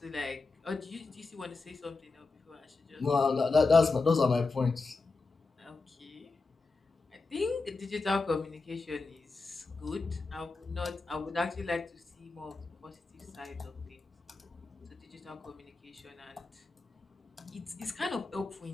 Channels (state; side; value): quieter; right; 3.9 dB